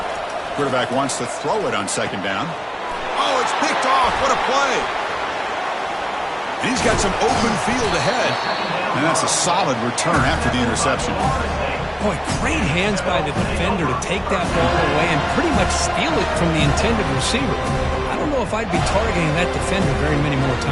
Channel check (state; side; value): identical; both; correlation 1.00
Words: Quarterback wants to throw it on 2nd down. Oh, it's picked off. What a play. And he's got some open field ahead. And that's a solid return after the interception. Boy, great hands by the defender to take that ball away and pretty much steal it from the intended receiver. I don't know if I'd be targeting that defender very many more